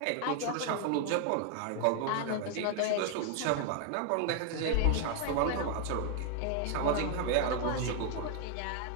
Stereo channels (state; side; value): different; both; correlation 0.01